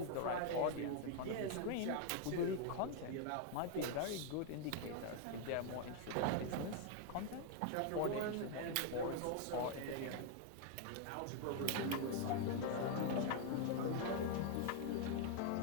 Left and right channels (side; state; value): both; different; correlation 0.00